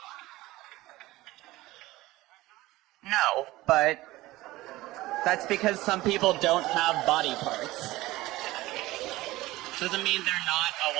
No, but that's because some people don't have body parts. Doesn't mean they're not a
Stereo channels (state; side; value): quieter; left; 18.3 dB